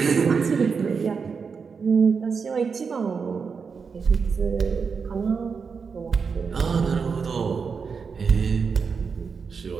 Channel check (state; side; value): quieter; left; 5.6 dB